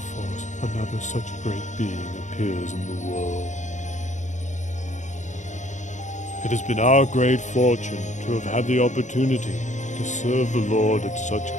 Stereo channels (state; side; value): late; right; 0.35 ms